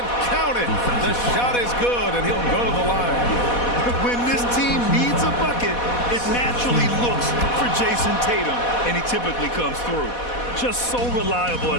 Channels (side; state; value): right; late; 4.1 ms